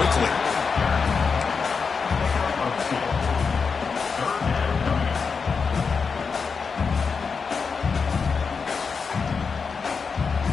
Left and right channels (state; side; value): quieter; right; 5.4 dB